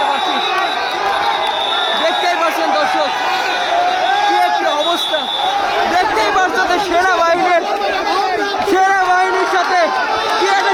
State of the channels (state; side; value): identical; both; correlation 1.00